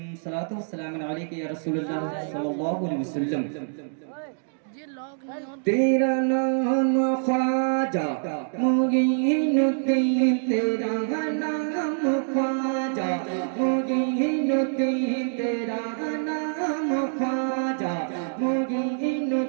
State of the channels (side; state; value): left; silent; digital silence